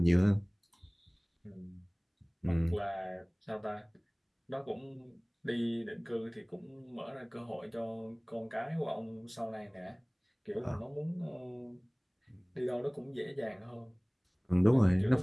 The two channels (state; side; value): identical; both; correlation 1.00